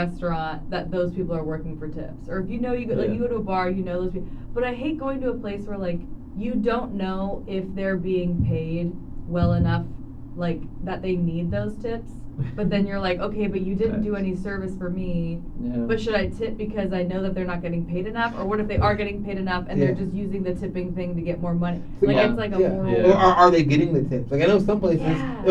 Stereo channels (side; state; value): both; identical; correlation 1.00